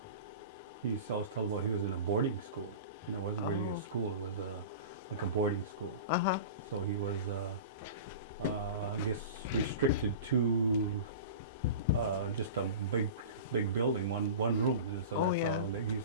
He used to always tell about he was in a boarding school. It wasn't really a school. It was like a boarding school. Uh-huh. So he was, I guess, restricted to just a big building, one room, and so that's all he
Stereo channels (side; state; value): both; inverted; correlation -0.33